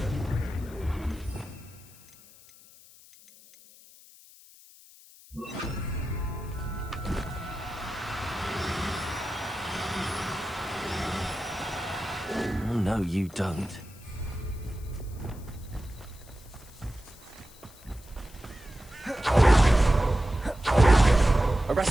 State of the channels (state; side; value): noise; left; hiss, 23 dB below the sound